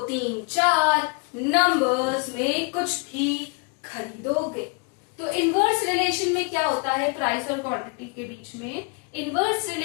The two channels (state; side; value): quieter; right; 32.7 dB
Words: 3 4 नंबर्स में कुछ भी खरीदोगे। तो इनवर्स रिलेशन में क्या होता है, प्राइस और क्वांटिटी के बीच में इनवर्स